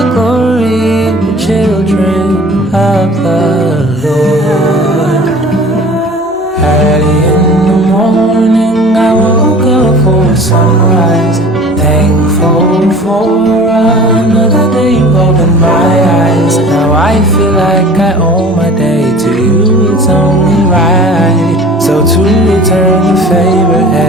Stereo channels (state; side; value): normal; both; correlation 0.44